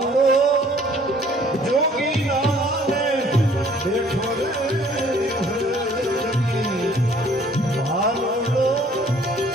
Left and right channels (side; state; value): both; normal; correlation 0.58